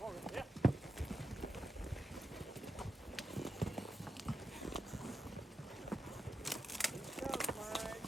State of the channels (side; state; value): both; normal; correlation 0.87